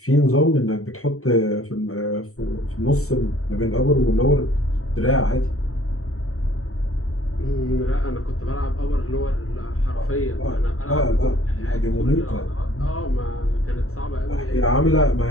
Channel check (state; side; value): late; right; 0.64 ms